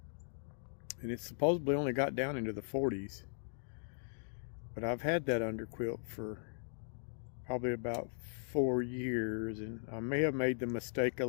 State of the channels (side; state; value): right; silent; digital silence